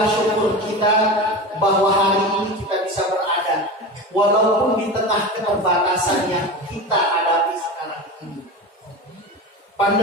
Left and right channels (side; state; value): both; normal; correlation 0.27